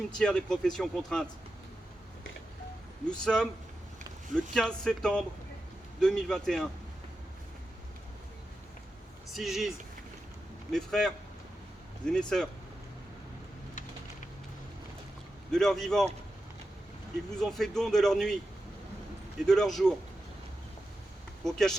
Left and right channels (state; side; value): normal; both; correlation 0.90